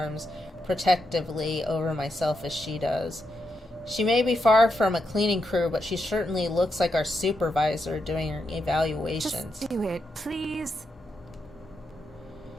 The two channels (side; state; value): both; normal; correlation 0.83